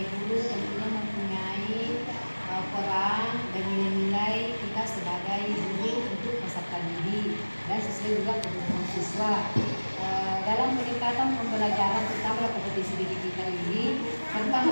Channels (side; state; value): both; inverted; correlation -1.00